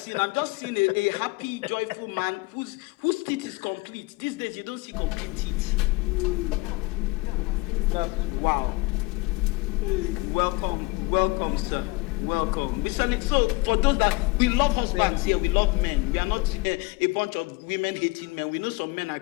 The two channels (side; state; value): right; quieter; 24.7 dB